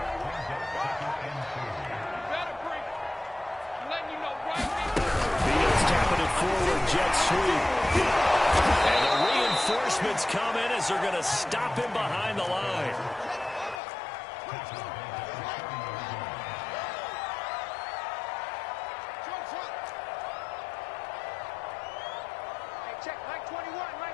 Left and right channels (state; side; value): drops out; right; at 13.8 s